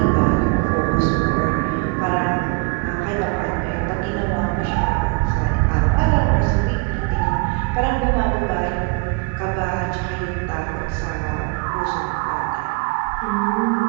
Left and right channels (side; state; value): left; quieter; 31.3 dB